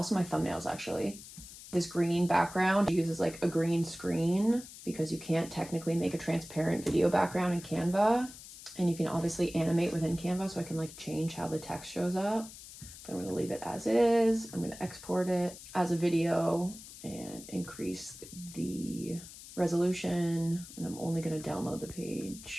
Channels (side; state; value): left; noise; hiss, 15 dB below the sound